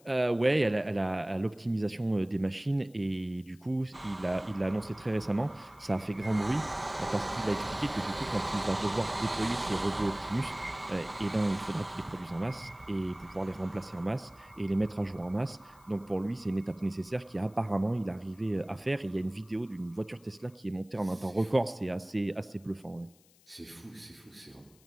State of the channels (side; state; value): left; noise; hiss, 29 dB below the sound